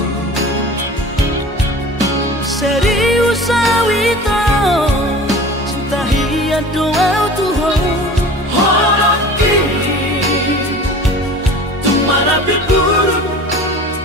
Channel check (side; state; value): both; normal; correlation 0.40